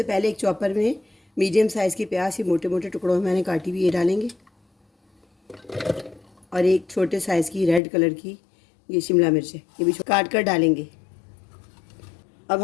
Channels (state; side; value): drops out; right; at 7.8 s